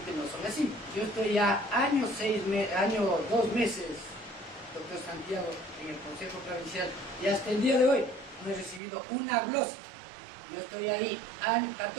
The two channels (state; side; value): drops out; left; at 8.8 s